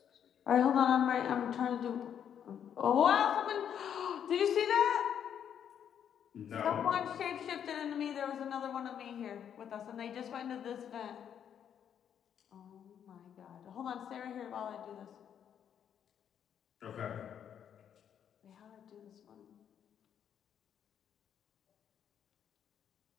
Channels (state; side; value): quieter; right; 8.8 dB